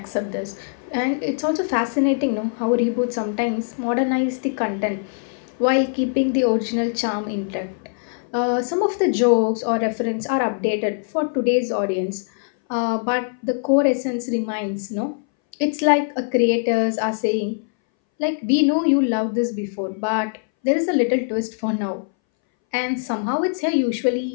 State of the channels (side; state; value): right; silent; 62 dB below the other